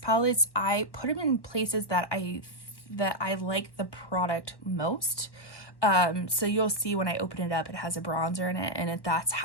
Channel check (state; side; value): late; right; 1.3 ms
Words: I put them in places that I like the product most. So you'll see when I open it up, it has a bronzer in it, and that's